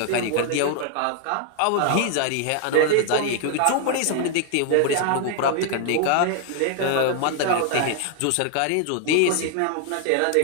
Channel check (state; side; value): different; both; correlation 0.00